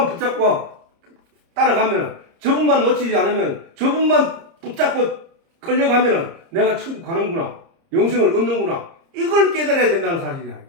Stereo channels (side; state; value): left; late; 30 ms